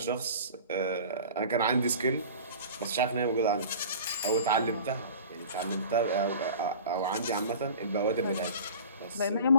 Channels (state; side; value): inverted; both; correlation -0.40